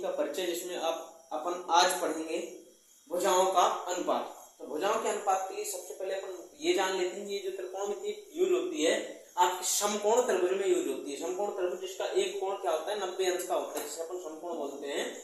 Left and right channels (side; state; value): both; identical; correlation 1.00